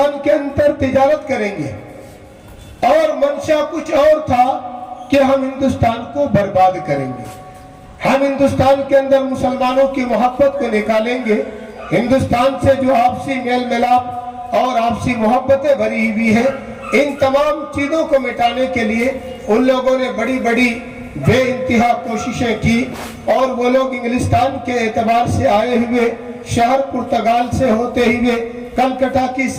के अंदर तिजारत करेंगे और मंशा कुछ और था कि हम हिंदुस्तान को बर्बाद करेंगे। हम हिंदुस्तान के अंदर मुसलमानों की मोहब्बत को निकालेंगे। हिंदुस्तान से जो आपसी मेल मिलाप और आपसी मोहब्बतें भरी हुई है, इन तमाम चीजों को मिटाने के लिए उन लोगों ने बड़ी बड़ी बेइंतहा कोशिशें की और वो लोग इंग्लिस्तान के एतबार से आए हुए शहर पुर्तगाल से होते हुए कलकत्ता की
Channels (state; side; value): identical; both; correlation 1.00